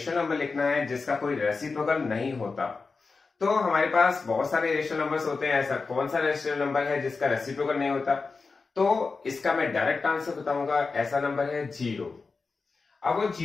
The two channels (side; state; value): right; quieter; 4.3 dB